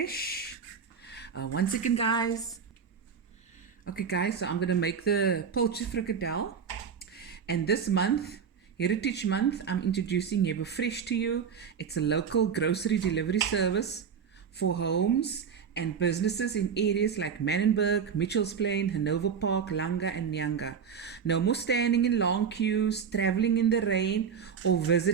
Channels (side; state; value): left; quieter; 6.8 dB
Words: One second guys. Okay guys, so I'm going to make the Pilchard Frikkadel, and this month, Heritage Month, I'm introducing Yebo Fresh to you. It's a local grocery delivery service for homes and businesses in areas like Manenberg, Mitchells Plain, Hanover Park, Langa and Nyanga. No more standing in long queues, traveling in the rain, or